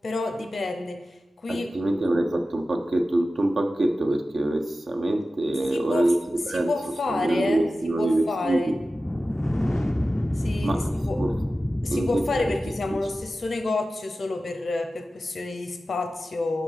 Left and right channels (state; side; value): normal; both; correlation 0.94